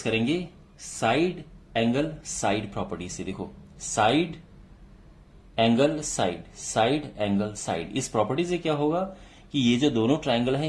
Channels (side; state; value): both; identical; correlation 1.00